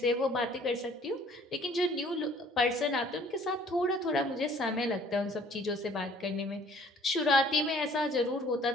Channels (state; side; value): normal; both; correlation 0.56